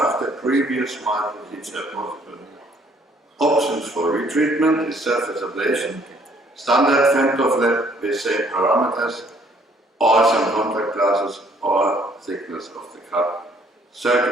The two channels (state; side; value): normal; both; correlation 0.63